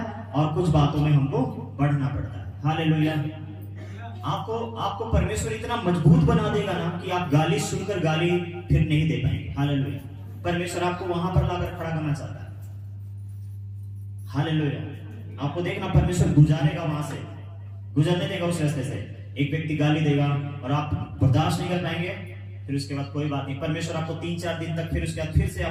और कुछ बातों में हमको बढ़ना पड़ता है। हालेलुया। आपको परमेश्वर इतना मजबूत बना देगा ना कि आप गाली सुनकर गाली फिर नहीं दे पाएंगे। हालेलुया। परमेश्वर आपको वहां पर लाकर खड़ा करना चाहता है। हालेलुया। आपको देखना, परमेश्वर गुजारेगा, वहां से गुजरने देगा उस रास्ते से। एक व्यक्ति गाली देगा और आप बर्दाश्त नहीं कर पाएंगे, फिर उसके बाद कोई बात नहीं, परमेश्वर आपको 3-4 दिन तक, फिर उसके बाद फिर से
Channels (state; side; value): identical; both; correlation 1.00